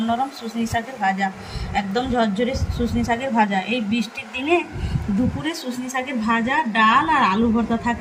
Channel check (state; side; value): identical; both; correlation 1.00